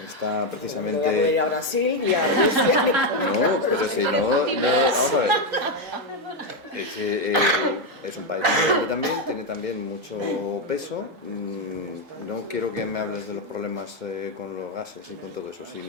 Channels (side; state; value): both; normal; correlation 0.06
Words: está precisamente... Voy a ir a Brasil y a Rusia. No, pero si no, vamos a ver. Es un país grande también, tiene también mucho peso. No quiero que me hables de los problemas con los gases y con todo eso,